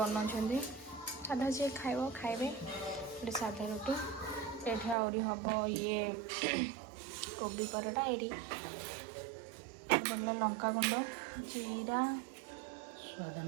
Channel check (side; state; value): left; drops out; at 5.0 s